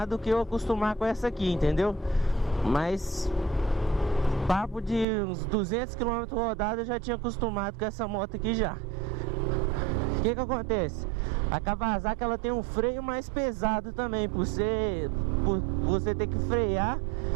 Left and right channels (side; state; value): left; drops out; at 5.1 s